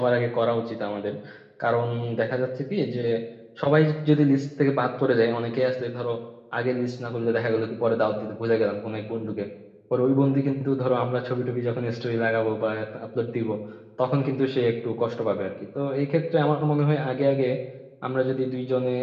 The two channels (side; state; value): both; identical; correlation 1.00